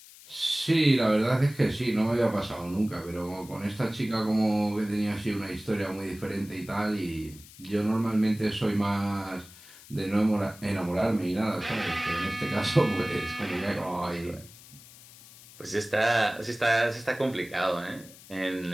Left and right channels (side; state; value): left; noise; hiss, 20 dB below the sound